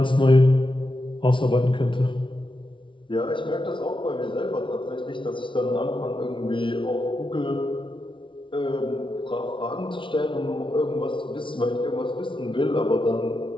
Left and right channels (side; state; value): right; late; 0.25 ms